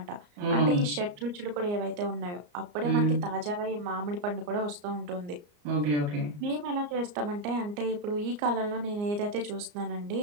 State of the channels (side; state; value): left; late; 34 ms